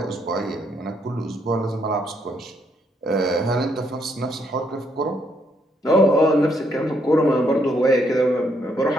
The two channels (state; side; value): normal; both; correlation 0.73